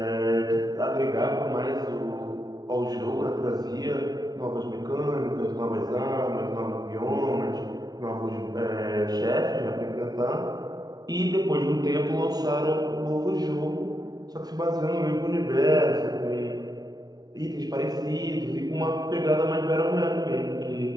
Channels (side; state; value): left; late; 0.19 ms